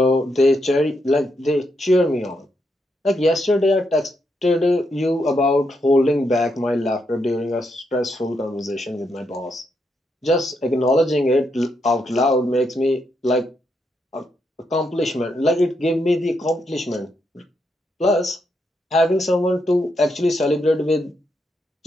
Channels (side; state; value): both; normal; correlation 0.80